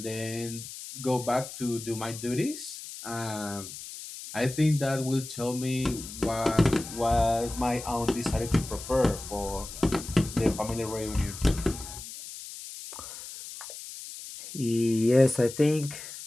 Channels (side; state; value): left; noise; hiss, 11 dB below the sound